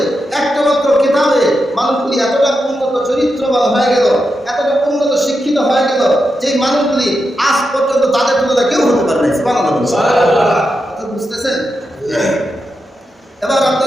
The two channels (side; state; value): both; normal; correlation 0.87